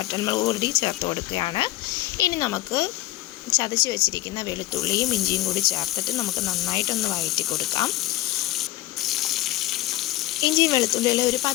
കൂടി ചേർത്ത് കൊടുക്കുകയാണ്. ഇനി നമുക്ക് ചതച്ച് വെച്ചിരിക്കുന്ന വെളുത്തുള്ളിയും ഇഞ്ചിയും കൂടി ചേർത്തിട്ട് നമുക്ക് നന്നായിട്ടൊന്ന് വഴറ്റി കൊടുക്കാം. ഇഞ്ചിയും വെളുത്തുള്ളിയിൽ ഒരു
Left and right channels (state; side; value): quieter; right; 16.7 dB